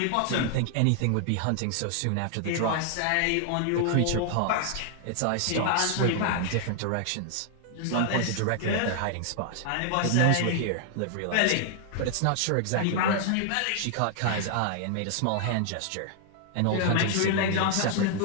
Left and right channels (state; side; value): different; both; correlation 0.00